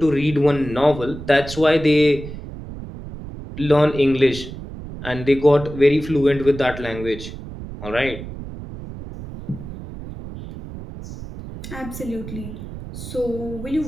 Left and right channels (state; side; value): noise; right; rumble, 11 dB below the sound